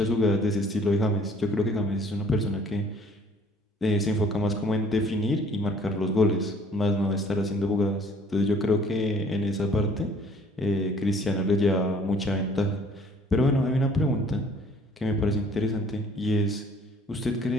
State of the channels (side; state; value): both; normal; correlation 0.56